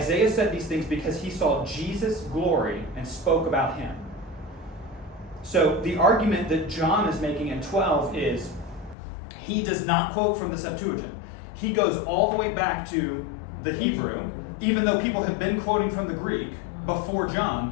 said these things because he saw Jesus' glory and spoke about him. So the argument that John is making in 12 is he does not quote from the Septuagint. He goes all the way back to the Hebrew, even though people have been quoting from the Greek before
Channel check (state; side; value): drops out; right; at 9.0 s